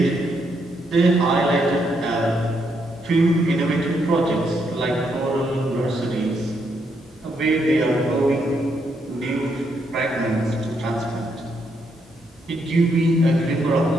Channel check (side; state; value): both; normal; correlation 0.77